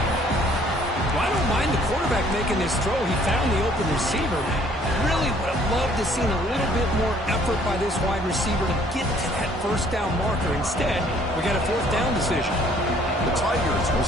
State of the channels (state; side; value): normal; both; correlation 0.59